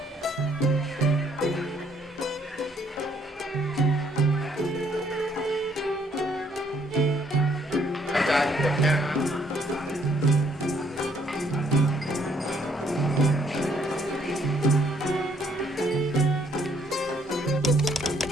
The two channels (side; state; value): both; normal; correlation 0.67